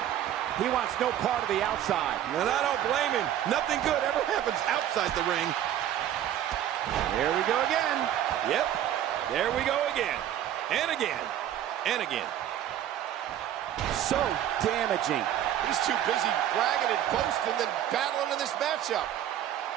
He wants no part of the outside. And I don't blame him. Nothing good ever happens outside the ring. Here we go again. Yep. There we go again. And again. And again. So damaging. He's too busy bragging and boasting than battling in this matchup.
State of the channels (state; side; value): quieter; left; 11.3 dB